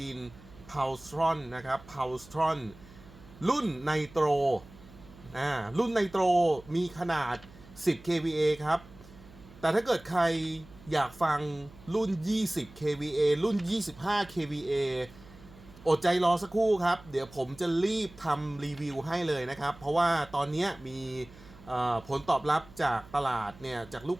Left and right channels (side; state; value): right; noise; hum, 21 dB below the sound